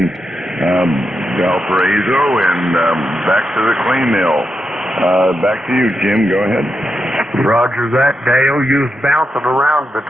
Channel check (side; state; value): both; normal; correlation 0.86